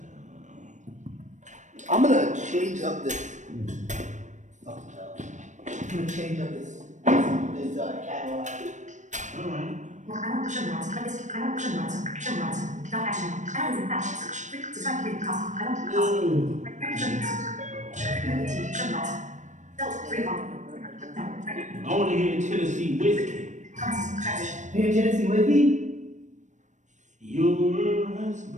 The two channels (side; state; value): left; late; 0.35 ms